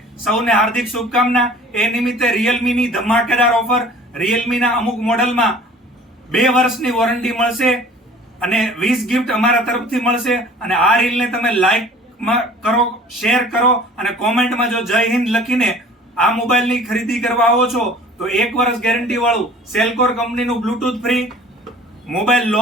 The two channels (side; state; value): both; normal; correlation 0.48